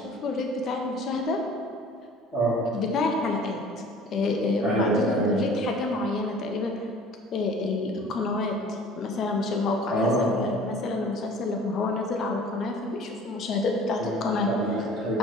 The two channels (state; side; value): normal; both; correlation 0.47